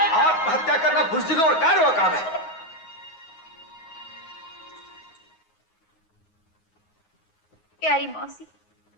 दो। आत्महत्या करना बुज़दिलों और कायरों का काम है। प्यारी मौसी,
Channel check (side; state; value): right; late; 9.3 ms